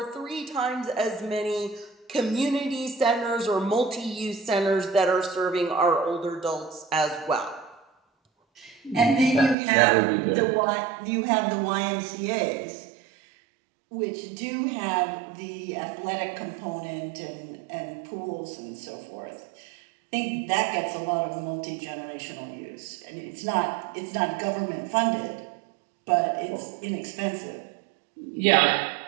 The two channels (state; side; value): drops out; left; at 9.6 s